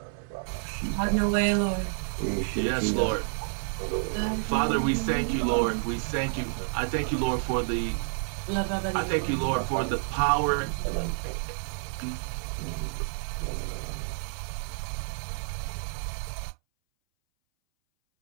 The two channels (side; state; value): left; silent; 59 dB below the other